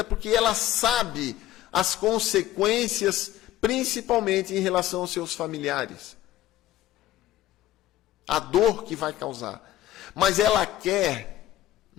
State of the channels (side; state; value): right; quieter; 13.7 dB